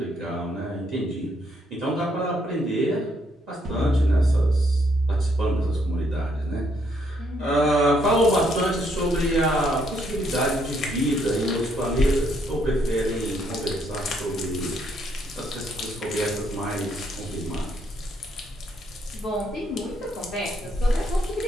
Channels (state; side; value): normal; both; correlation 0.72